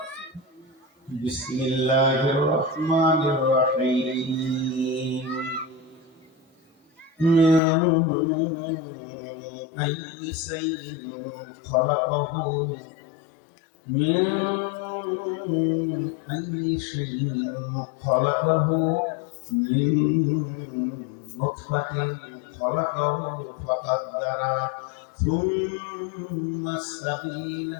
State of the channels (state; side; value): drops out; right; at 7.6 s